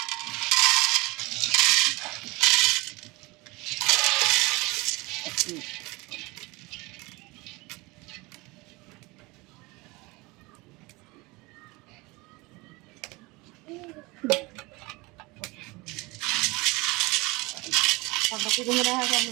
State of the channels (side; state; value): left; quieter; 23.9 dB